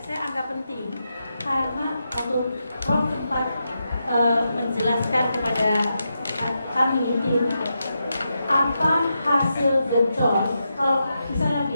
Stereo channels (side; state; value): both; inverted; correlation -0.86